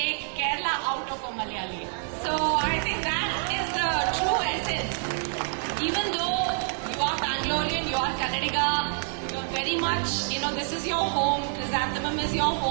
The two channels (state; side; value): silent; left; 60 dB below the other